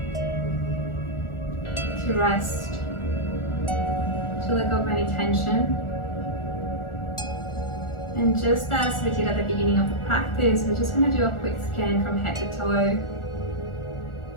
to rest, to let go of any tension. And just as we did at the beginning of the practice, we're just going to do a quick scan from head to toe.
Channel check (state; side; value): late; right; 1.4 ms